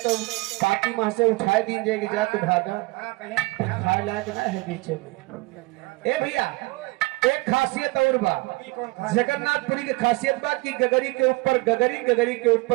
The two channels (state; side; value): quieter; left; 24.1 dB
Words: पाती माह से उठाए दी जाएगी जा तो भागा हाँ, कहीं खाए लायक ना है बीचे में। ए भैया एक खासियत और बा, जगन्नाथपुरी की खासियत बा कि गगरी के ऊपर गगरी, गगरी के